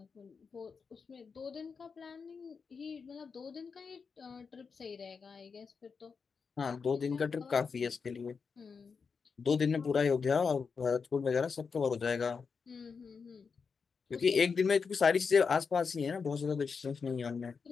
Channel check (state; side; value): quieter; right; 5.5 dB